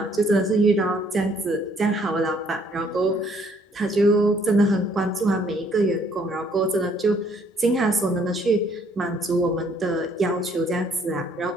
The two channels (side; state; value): both; normal; correlation 0.64